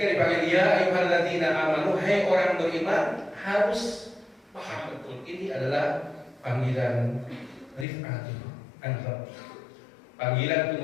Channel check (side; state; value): right; drops out; at 7.9 s